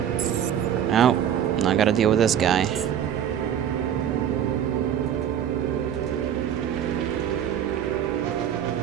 Oh, I gotta deal with this guy.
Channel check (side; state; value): left; quieter; 9.5 dB